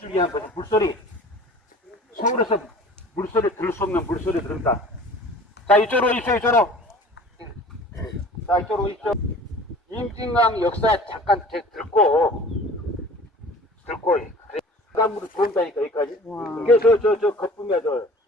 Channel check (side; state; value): both; normal; correlation 0.45